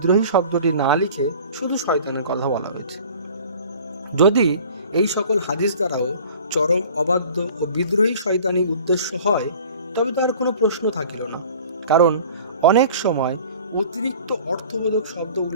শব্দটি না লিখে শুধু শয়তানের কথা বলা হয়েছে। যদি এই সকল হাদিস দ্বারাও চরম অবাধ্য ও বিদ্রোহী শয়তানি উদ্দেশ্য হয়, তবে তার কোনো প্রশ্ন থাকিল না, কারণ অনেক সময় অতিরিক্ত অর্থবোধক শব্দ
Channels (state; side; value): inverted; both; correlation -0.46